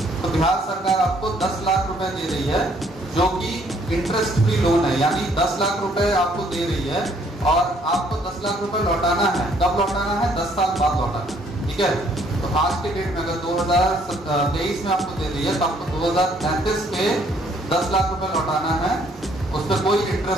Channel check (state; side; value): normal; both; correlation 0.64